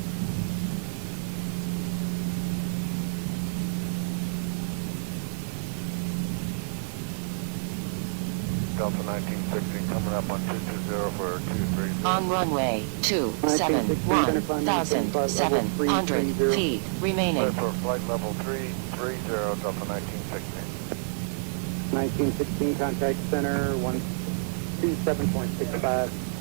Delta 1960 coming up on 220 for 230. On runway 271, 1,700 feet remaining. Clear for flight level 330, Delta 1960. 1916, contact center, 127.65.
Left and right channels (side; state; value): left; silent; 59 dB below the other